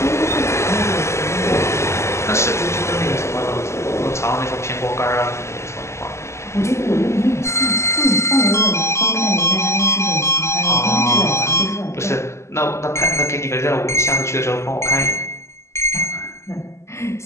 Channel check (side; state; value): right; late; 0.13 ms